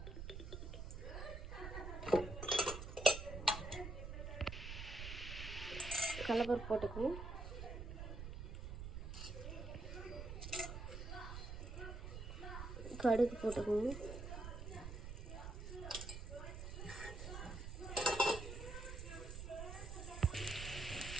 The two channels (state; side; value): noise; right; rumble, 7 dB below the sound